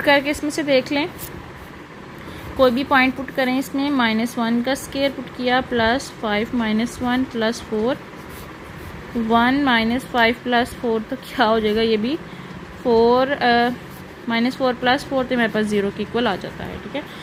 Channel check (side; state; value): both; identical; correlation 1.00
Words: करके इसमें से देख लें, कोई भी पॉइंट पुट करें इसमें। -1 का स्केयर पुट किया +5 - 1 + 4, 1 - 5 + 4 तो क्या हो जाएगा, ये भी 4 -4 + 4 तो मेरे पास 0 के इक्वल आ जाता है। ठीक है,